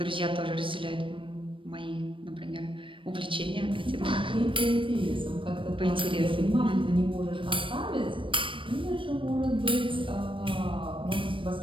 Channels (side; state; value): left; late; 0.25 ms